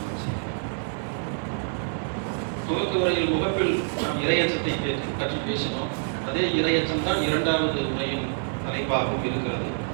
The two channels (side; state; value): left; silent; digital silence